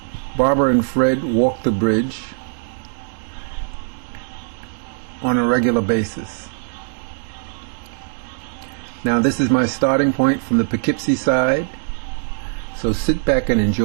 Barbara and Fred walk the bridge on a regular basis. Now this is my starting point from the Poughkeepsie side, so sit back and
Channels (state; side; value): silent; left; digital silence